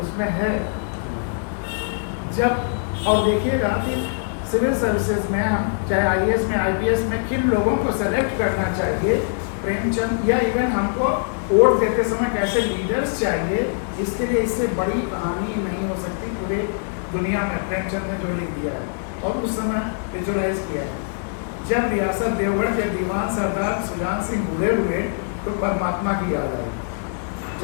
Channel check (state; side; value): silent; right; digital silence